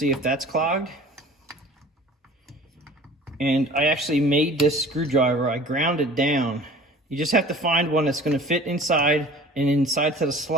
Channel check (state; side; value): normal; both; correlation 0.45